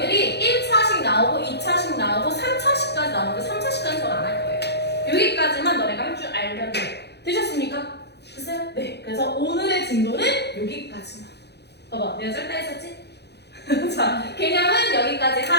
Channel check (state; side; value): late; right; 0.49 ms